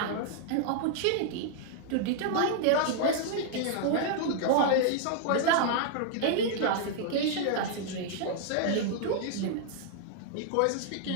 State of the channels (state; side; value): different; both; correlation -0.01